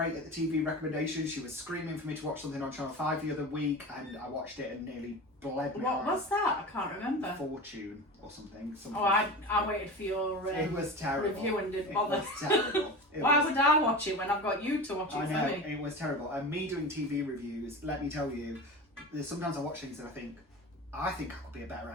at the TV recommendations. She was screaming for me to watch something on Channel 5 the other week, and I watched it and nearly bled me. What was that? I can't remember. Fortune or something. Oh, I waited for your it was terrible. review and didn't bother. It was terrible. Why would I watch it when I've got you to watch it I for know, me? it was terrible. And me doing TV reviews, let me tell you, there's sometimes I watch things and I think I could be a better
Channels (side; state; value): both; normal; correlation 0.30